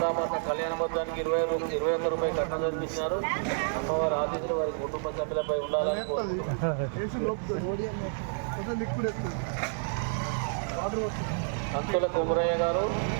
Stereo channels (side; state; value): left; silent; digital silence